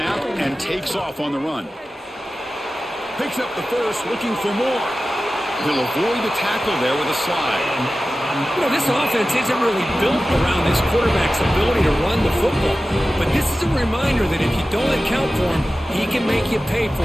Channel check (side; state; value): both; normal; correlation 0.95